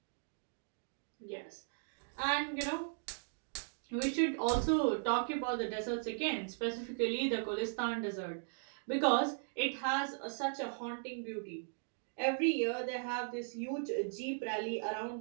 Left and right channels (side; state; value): left; silent; digital silence